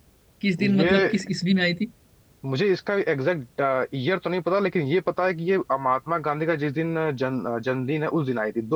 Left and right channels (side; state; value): both; identical; correlation 1.00